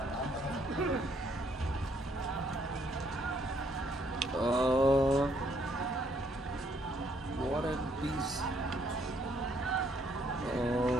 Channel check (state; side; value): normal; both; correlation 0.68